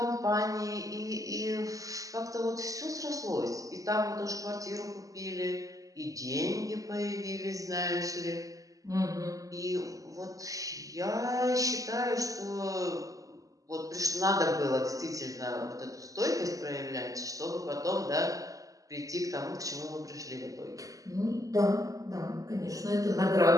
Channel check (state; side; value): late; left; 0.17 ms